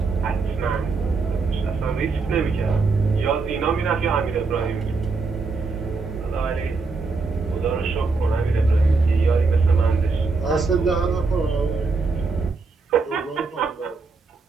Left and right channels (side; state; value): left; quieter; 4.2 dB